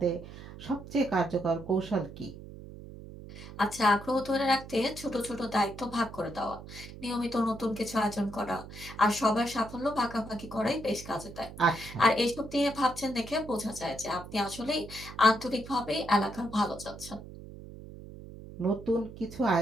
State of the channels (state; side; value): noise; right; hum, 14 dB below the sound